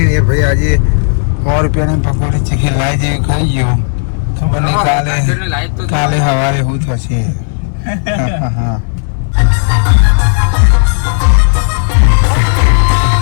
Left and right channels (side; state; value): right; silent; digital silence